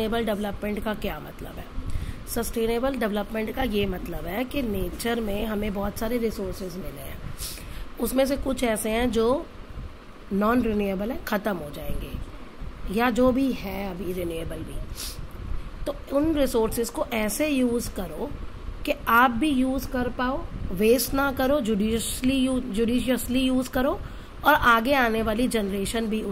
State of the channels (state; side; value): identical; both; correlation 1.00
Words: डेवलपमेंट का क्या मतलब है? सस्टेनेबल डेवलपमेंट का ये मतलब है कि नेचर में हमें बहुत सारे रिसोर्सेज मिले हैं, उसमें से कुछ ऐसे हैं जो नॉन रिन्यूएबल है, ख़त्म हो जाएंगे, या जो भी है अभी रिन्यूएबल भी, तो उन रिसोर्सेज को ऐसे यूज़ करो कि आप भी यूज़ कर पाओ, वेस्ट ना करो, जुडिशियसली यूज़ करो और आगे आने वाली जनरेशन भी